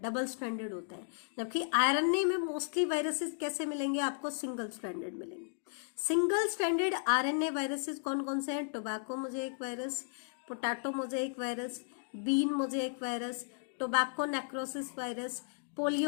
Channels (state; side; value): silent; right; digital silence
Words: डबल स्ट्रैंडेड होता है, जबकि आरएनए में मोस्टली वायरसेस कैसे मिलेंगे आपको, सिंगल स्ट्रैंडेड मिलेंगे। सिंगल स्ट्रैंडेड आरएनए वायरसेस कौन कौन से हैं, tobacco mosaic virus, potato mosaic virus, bean mosaic virus, tobacco necrosis virus,